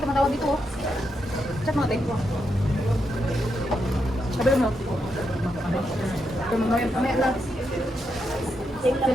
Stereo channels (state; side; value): normal; both; correlation 0.82